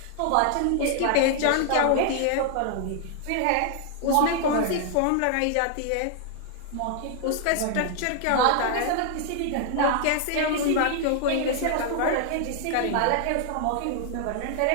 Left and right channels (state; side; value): different; both; correlation 0.00